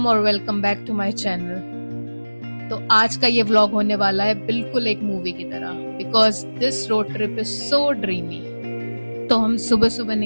और welcome back to my channel. तो आज का ये व्लॉग होने वाला है बिल्कुल एक मूवी की तरह, because this road trip is so dreamy. तो हम सुबह सुबह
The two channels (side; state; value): both; inverted; correlation -1.00